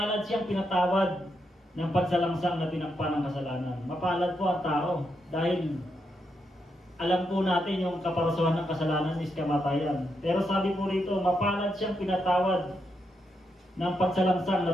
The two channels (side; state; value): both; normal; correlation 0.82